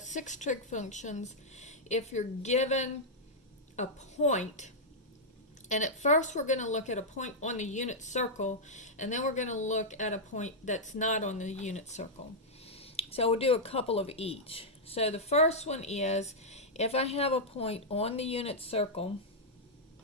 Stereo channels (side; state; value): both; normal; correlation -0.07